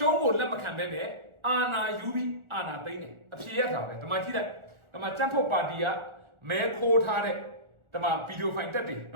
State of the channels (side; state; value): left; late; 1.4 ms